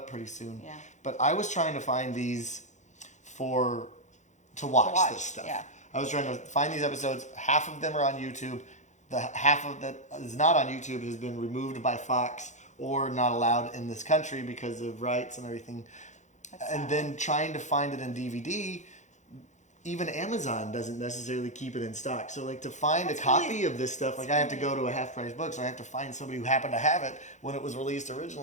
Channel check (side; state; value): right; late; 0.35 ms